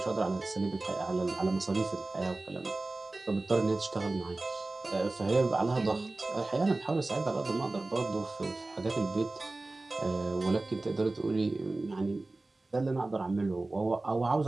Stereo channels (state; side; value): quieter; left; 3.0 dB